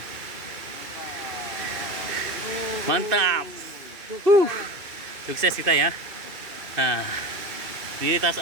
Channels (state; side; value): late; left; 2.6 ms